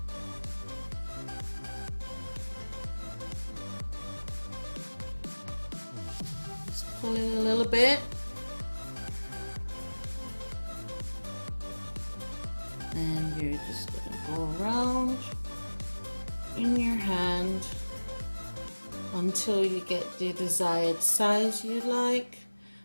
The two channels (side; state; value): both; inverted; correlation -1.00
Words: Pull it a little bit, and you're just going to go around in your hand until you get the desired size you like.